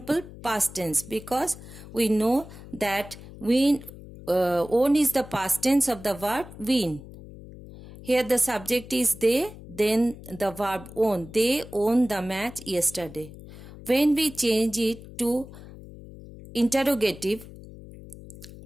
past tense because we know that win, won is the past tense of the verb win. Here the subject is they, then the verb won. They won the match yesterday. When we change it to interrogative,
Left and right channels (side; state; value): left; noise; hum, 16 dB below the sound